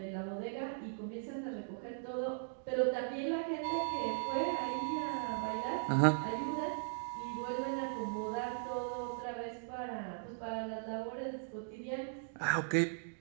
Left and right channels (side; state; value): left; silent; digital silence